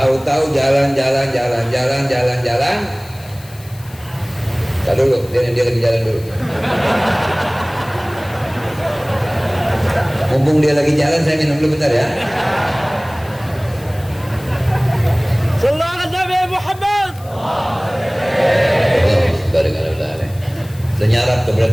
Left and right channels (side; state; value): left; noise; hiss, 23 dB below the sound